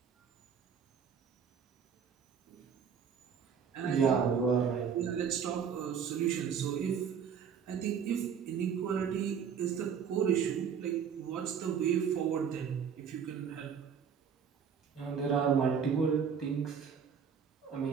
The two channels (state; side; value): quieter; left; 7.1 dB